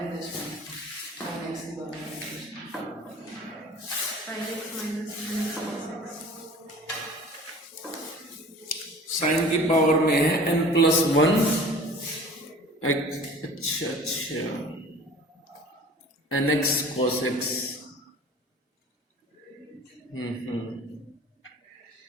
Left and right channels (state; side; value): normal; both; correlation 0.44